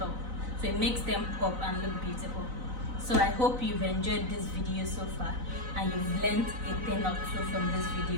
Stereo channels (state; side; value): late; left; 4.0 ms